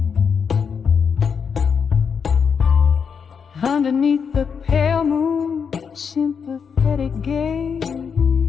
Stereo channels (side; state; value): right; quieter; 6.4 dB